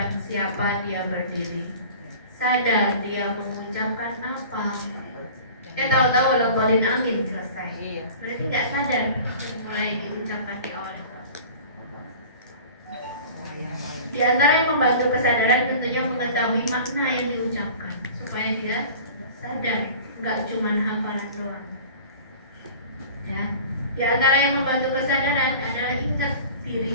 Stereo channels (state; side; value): inverted; both; correlation -0.41